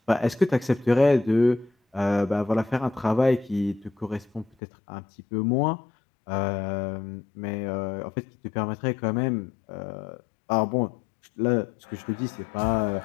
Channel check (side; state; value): right; drops out; at 4.5 s